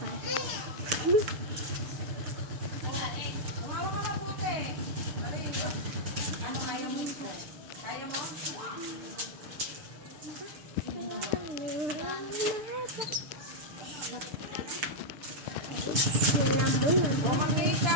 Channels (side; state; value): left; late; 6.8 ms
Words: Umawa ka mabuti. Ano kaya mo? Kaya mo?